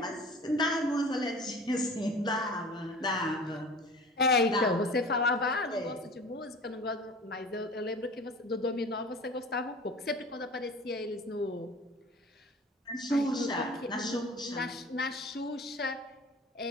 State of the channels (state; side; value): normal; both; correlation 0.41